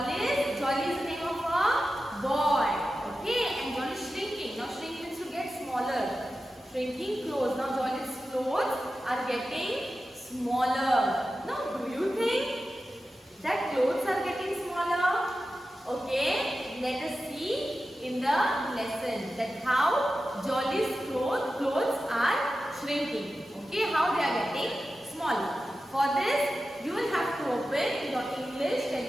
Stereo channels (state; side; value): normal; both; correlation 0.92